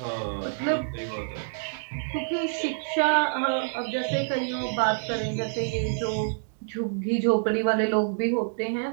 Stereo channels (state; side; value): silent; left; 60 dB below the other